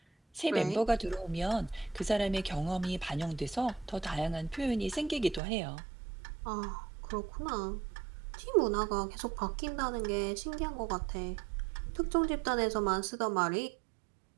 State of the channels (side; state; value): left; drops out; at 5.4 s